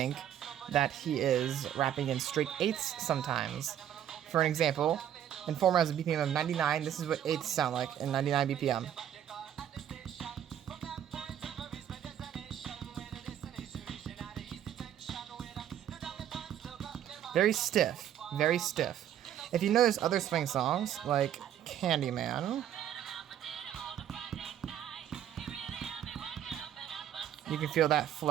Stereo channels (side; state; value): left; quieter; 10.4 dB